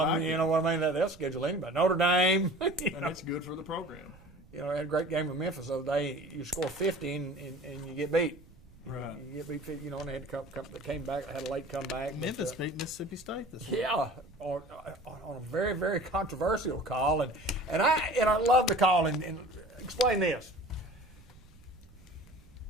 you know what I mean? They'll schedule anybody. Notre Dame. And it's good for the program. I had a great game with Memphis the other day. You score 50 and you get beat. Right. You get beat 50, and they had to come. They came back. They had a late comeback. Memphis beat Mississippi State this week. Yeah, on a very, very controversial call, and I love the call. And explain this:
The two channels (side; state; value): right; noise; rumble, 23 dB below the sound